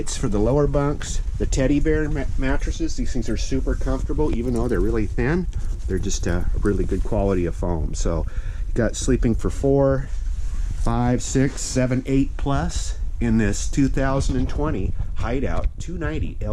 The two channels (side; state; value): both; identical; correlation 1.00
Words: for the lower bunks. The teddy bear mattresses, these things are super comfortable even though they're really thin. They're just a really good quality of foam. So you got sleeping for 4, 5, 6, 7, 8 plus in this 2020 Hideout 290